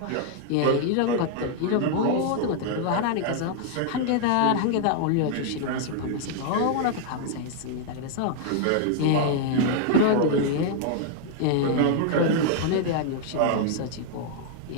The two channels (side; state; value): both; different; correlation 0.00